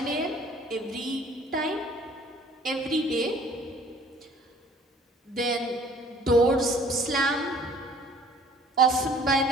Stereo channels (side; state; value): both; normal; correlation 0.53